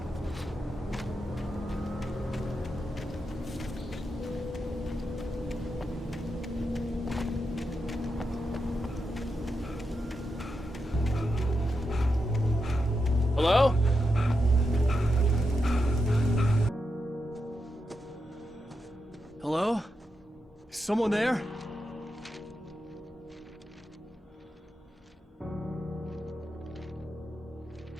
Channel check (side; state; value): both; normal; correlation 0.86